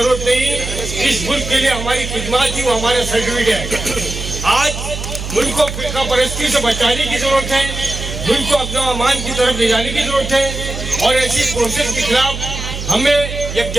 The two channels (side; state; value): right; noise; hum, 7 dB below the sound